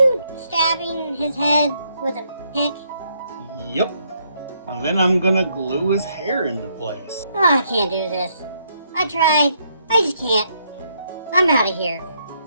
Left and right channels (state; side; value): inverted; both; correlation -0.73